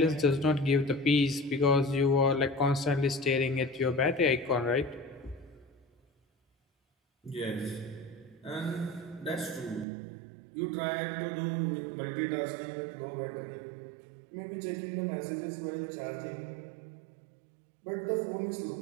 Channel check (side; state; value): left; drops out; at 9.9 s